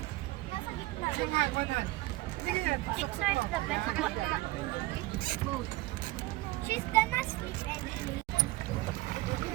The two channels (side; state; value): left; quieter; 19.1 dB